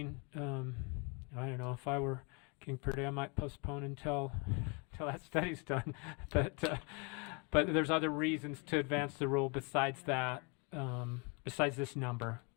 I don't know, if I were King Purdy, I might postpone until that study's done. But there's other reasons to advance the rule besides that, besides this number,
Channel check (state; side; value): quieter; right; 30.9 dB